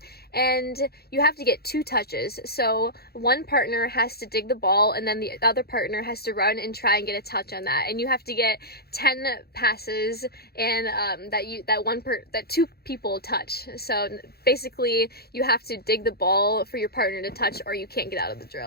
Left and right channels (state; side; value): late; right; 0.46 ms